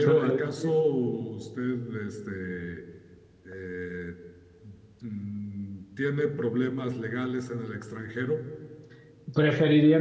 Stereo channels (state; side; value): identical; both; correlation 1.00